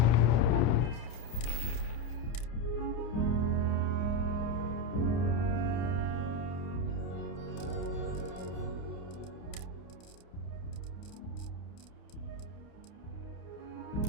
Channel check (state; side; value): late; right; 30 ms